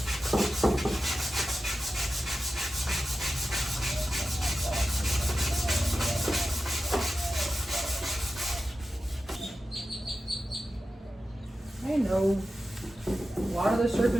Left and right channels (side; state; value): both; normal; correlation 0.93